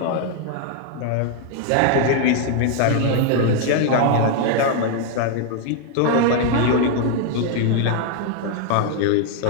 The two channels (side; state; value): both; different; correlation 0.00